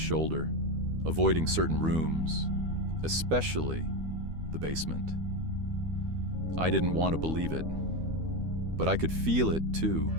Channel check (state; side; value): late; left; 13 ms